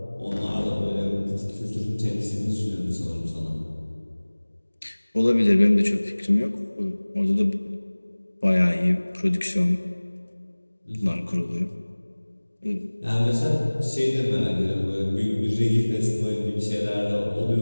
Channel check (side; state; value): both; inverted; correlation -1.00